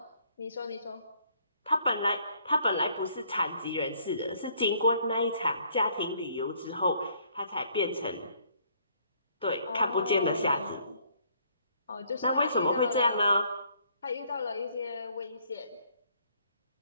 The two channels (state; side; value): inverted; both; correlation -0.64